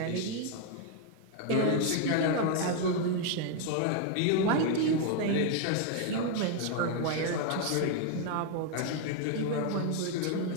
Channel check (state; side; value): different; both; correlation 0.00